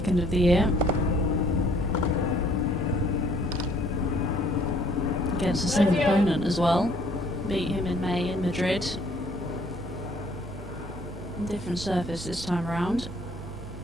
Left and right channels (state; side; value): normal; both; correlation 0.61